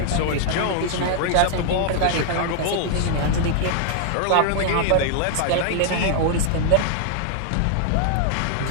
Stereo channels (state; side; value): different; both; correlation 0.00